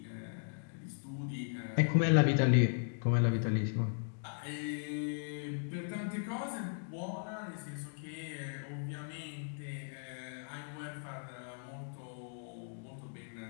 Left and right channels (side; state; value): right; silent; digital silence